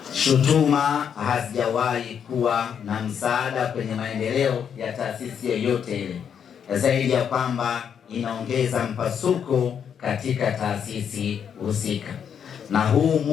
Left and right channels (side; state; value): right; quieter; 7.9 dB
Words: Shutuma hazijawahi kuwa na msaada kwenye maendeleo ya taasisi yoyote ile, zaidi ya kwamba inaongeza mpasuko katika taasisi husika. Na huu